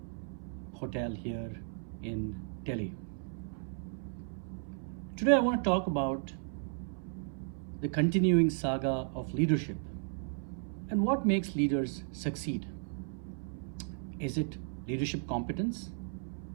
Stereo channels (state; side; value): silent; left; 55 dB below the other